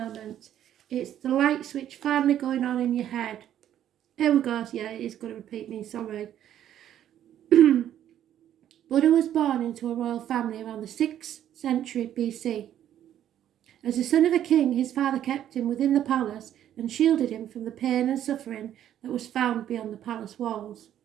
It's the light switch finally going on in your head. Here we go. Yeah, it is going to repeat me, sorry. Buddha was born into a royal family around the 6th century BC. As the son of a king, his father kept him within the palace and shielded him from the pain and suffering that was found beyond the palace walls.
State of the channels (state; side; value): quieter; left; 11.0 dB